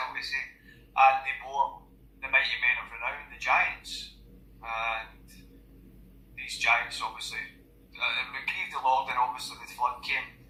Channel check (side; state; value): both; identical; correlation 1.00